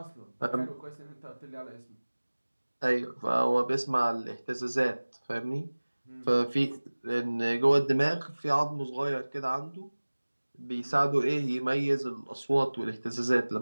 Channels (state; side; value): inverted; both; correlation -1.00